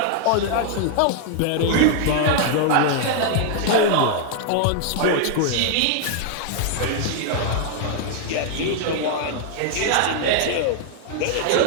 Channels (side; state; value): both; different; correlation 0.00